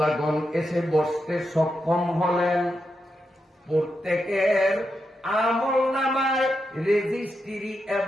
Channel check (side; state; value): both; normal; correlation 0.86